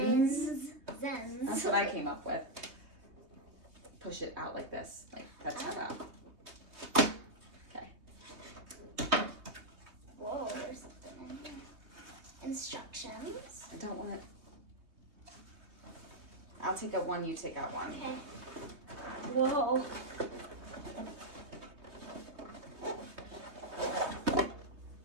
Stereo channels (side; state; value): left; late; 3.2 ms